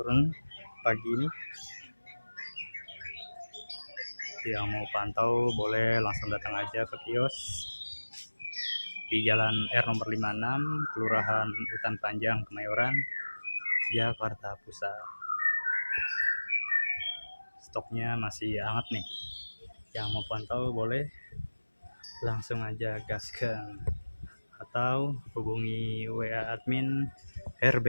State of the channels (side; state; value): both; inverted; correlation -1.00